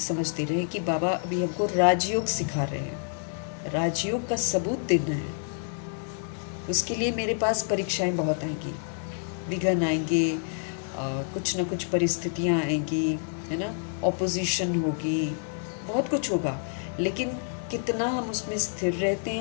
दे रहे हैं कि बाबा अभी हमको राजयोग सिखा रहे हैं, राजयोग का सबूत देना है। उसके लिए मेरे पास परीक्षाएं बहुत आएंगी, विघ्न आएंगे, कुछ ना कुछ परिस्थितियां आएंगी, है ना, ऑपोजिशन होगी, बहुत कुछ होगा। लेकिन कितना हम उसमें स्थिर रहते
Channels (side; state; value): right; silent; 58 dB below the other